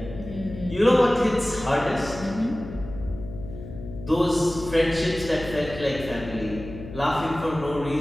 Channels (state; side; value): noise; left; hum, 13 dB below the sound